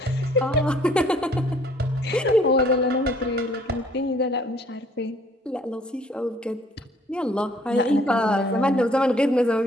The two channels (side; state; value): both; normal; correlation 0.59